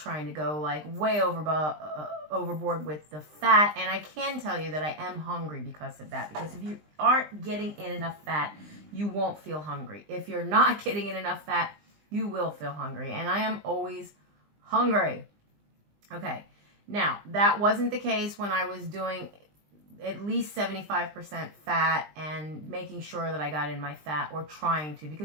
to go like way overboard with the fat. And I can tell you that I am hungry because of that, because if you aren't getting in enough fat, you won't feel hungry. If you're not getting in enough fat, you will feel hungry, and I am always hungry. Okay, now that wasn't the case when I was doing at least 75% fat and making sure that I got in my fat, or trying to,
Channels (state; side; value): late; left; 20 ms